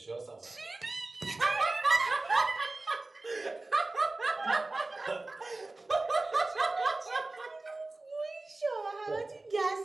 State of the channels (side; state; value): left; quieter; 3.1 dB